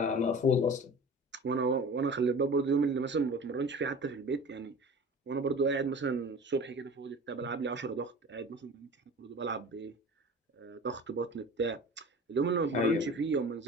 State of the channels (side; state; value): both; normal; correlation 0.39